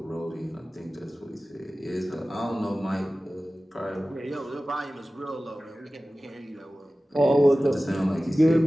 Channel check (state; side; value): normal; both; correlation 0.96